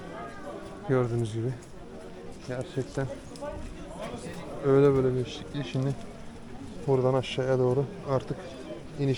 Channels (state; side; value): identical; both; correlation 1.00